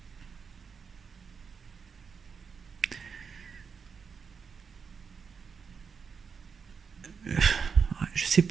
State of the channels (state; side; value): quieter; left; 5.9 dB